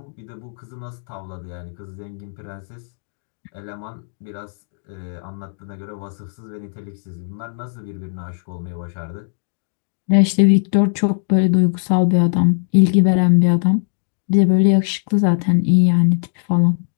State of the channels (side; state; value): right; silent; digital silence